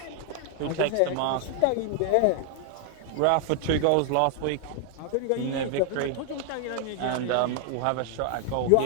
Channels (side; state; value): both; different; correlation 0.00